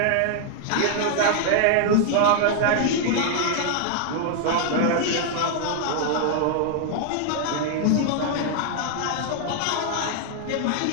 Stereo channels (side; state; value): both; different; correlation 0.00